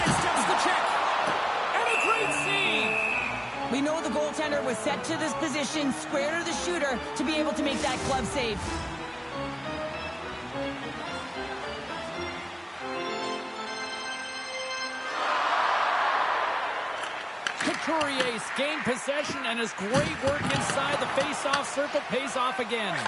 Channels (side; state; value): both; identical; correlation 1.00